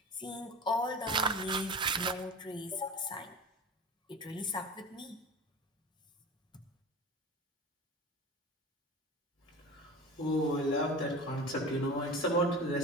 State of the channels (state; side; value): normal; both; correlation 0.33